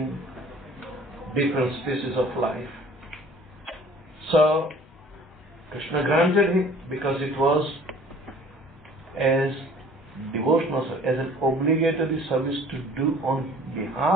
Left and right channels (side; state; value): both; normal; correlation 0.51